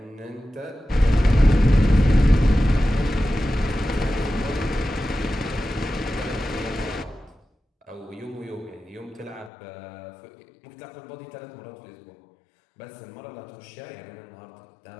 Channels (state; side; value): drops out; right; at 9.5 s